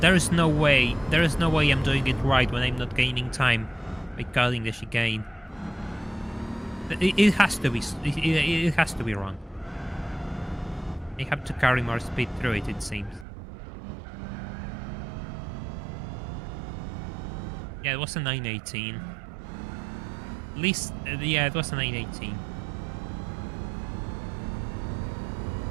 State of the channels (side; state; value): left; drops out; at 13.2 s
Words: is no way. There is no way I'm doing it right when I'm not gaining time by cutting the chicane. It has to be. It has to be wrong. I have to carry more speed through it. It seems. Yeah, it was a 918. At least, yeah, it was a 918.